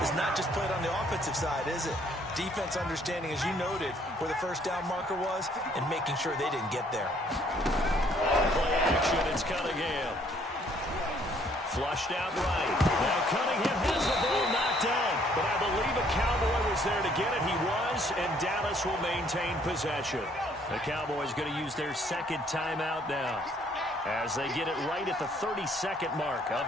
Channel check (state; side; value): normal; both; correlation 0.63